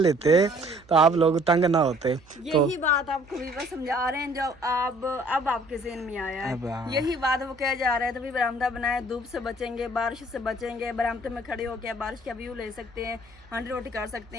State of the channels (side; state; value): right; noise; hum, 27 dB below the sound